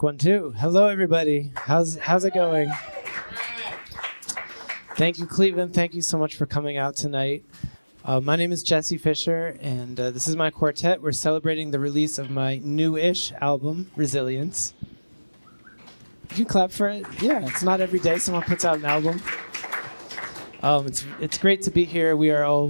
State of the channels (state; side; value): inverted; both; correlation -1.00